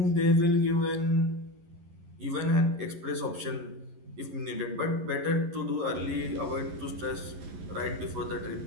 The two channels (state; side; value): late; left; 11 ms